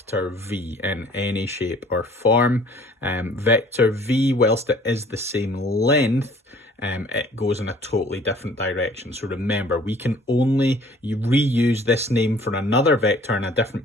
V in any shape or form. Vector V, whilst it is the same length, it goes in a totally different direction. So remember, we can only reuse this name for another vector in a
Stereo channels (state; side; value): normal; both; correlation 0.53